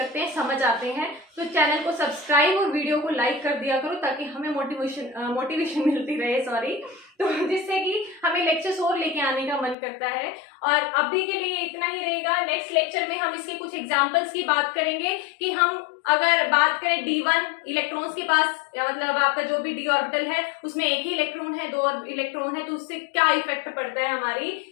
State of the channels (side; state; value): right; drops out; at 9.8 s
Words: हैं, समझ आते हैं, तो चैनल को सब्सक्राइब और वीडियो को लाइक कर दिया करो ताकि हमें मोटिवेशन मिलती रहे, तो जिससे कि हमें लेक्चर्स और लेके आने का मन करता है। और अभी के लिए इतना ही रहेगा। नेक्स्ट लेक्चर में हम इसके कुछ एग्जांपल्स की बात करेंगे कि हम अगर बात करें D1 इलेक्ट्रॉन्स के पास, या मतलब आपका जो भी डी ऑर्बिटल है उसमें एक ही इलेक्ट्रॉन है, 2 इलेक्ट्रॉन है, तो उससे क्या इफेक्ट पड़ता है